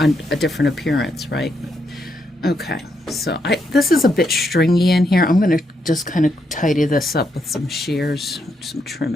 appearance, right? Okay, so this is a bit stringy in here. I'm going to just kind of tidy this up with some shears, some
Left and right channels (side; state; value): both; normal; correlation 0.79